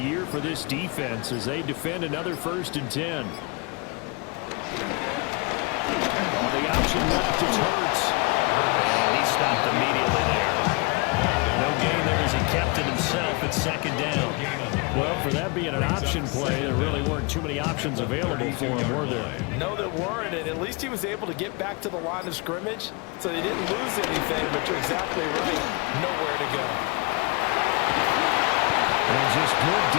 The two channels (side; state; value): right; quieter; 29.2 dB